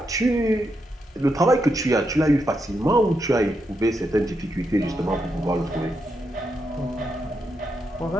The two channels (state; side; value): normal; both; correlation 0.83